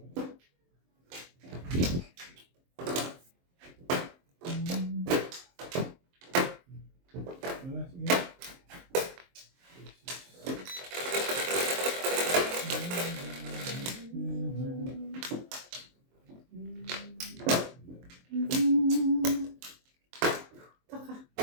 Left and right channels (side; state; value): left; late; 23 ms